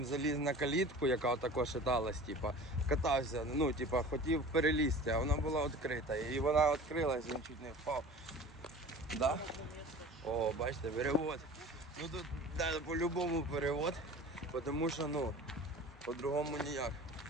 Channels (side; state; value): both; normal; correlation 0.40